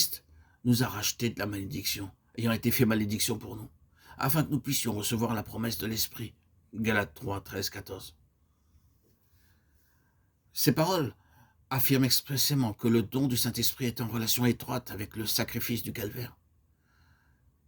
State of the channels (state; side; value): identical; both; correlation 1.00